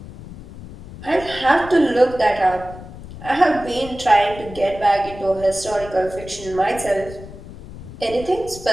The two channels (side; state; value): left; noise; rumble, 15 dB below the sound